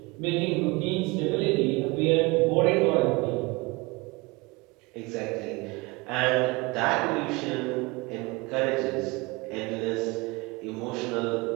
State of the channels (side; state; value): left; quieter; 24.9 dB